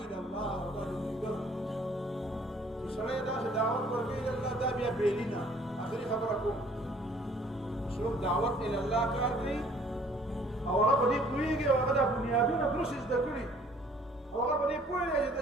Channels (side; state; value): both; normal; correlation 0.57